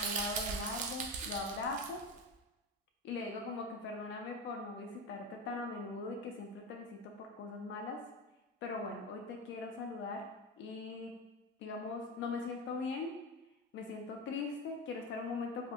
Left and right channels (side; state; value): both; normal; correlation 0.21